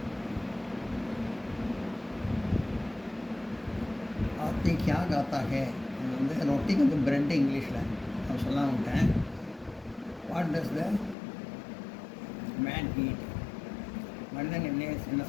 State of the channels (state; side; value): drops out; right; at 11.2 s